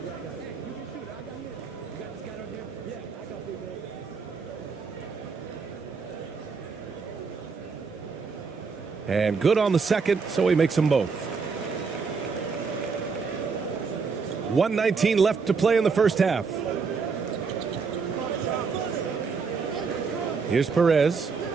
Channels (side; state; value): left; quieter; 5.1 dB